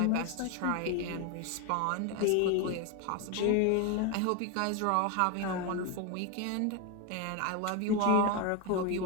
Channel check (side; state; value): both; different; correlation 0.02